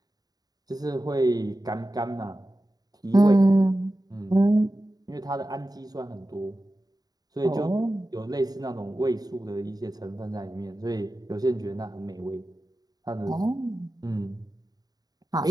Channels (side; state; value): left; late; 0.18 ms